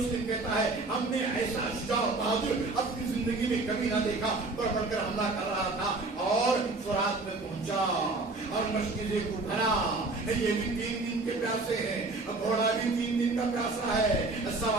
کہتا ہے ہم نے ایسا شجاع بہادر اپنی زندگی میں کبھی نہ دیکھا، بڑھ بڑھ کر حملہ کر رہا تھا، اور فرات میں پہنچا اور مشکلیں کو بھرا۔ یہ بھی 3 دن کے پیاسے ہیں، گھوڑا بھی 3 دن کا پیاسا ہے،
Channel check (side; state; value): left; quieter; 3.3 dB